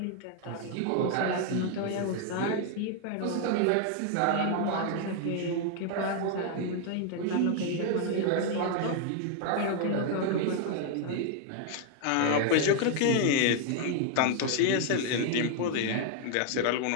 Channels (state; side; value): different; both; correlation 0.00